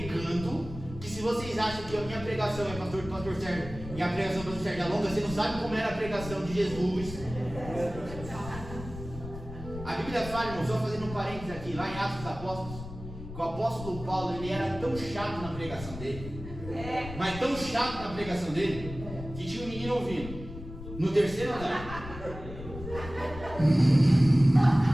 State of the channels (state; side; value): noise; left; rumble, 12 dB below the sound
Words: Que se vocês acham que a minha pregação é pastor Sérgio e a pregação do pastor Sérgio é longa, você não sabe como era a pregação de Jesus. A Bíblia fala, irmão, só fazendo um parênteses aqui, lá em Atos dos Apóstolos, que o apóstolo Paulo, ele era tão chato na pregação dele, mas tão chato na pregação dele, que tinha um menino ouvindo no terceiro andar.